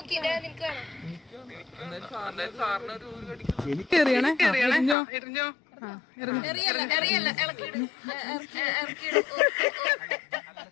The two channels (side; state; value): right; drops out; at 5.0 s